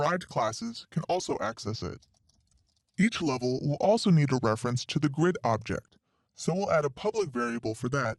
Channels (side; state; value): both; identical; correlation 1.00